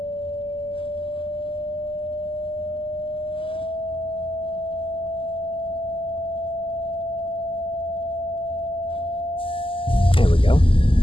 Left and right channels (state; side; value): late; right; 0.25 ms